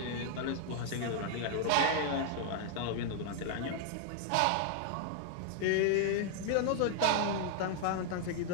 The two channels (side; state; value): both; different; correlation 0.00